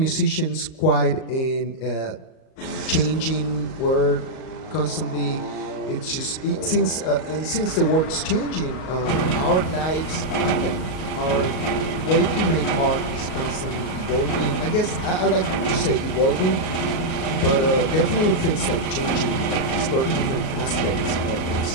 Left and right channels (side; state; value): right; late; 38 ms